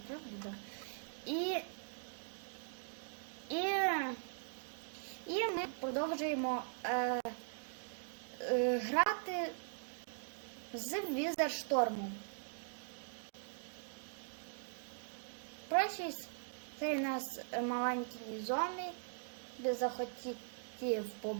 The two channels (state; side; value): silent; left; digital silence